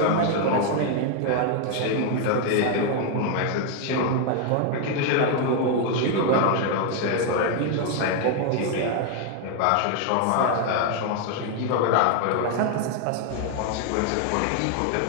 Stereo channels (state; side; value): different; both; correlation 0.00